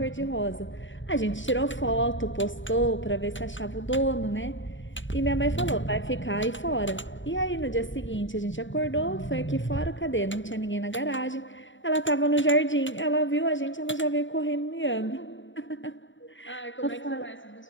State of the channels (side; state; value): right; late; 0.55 ms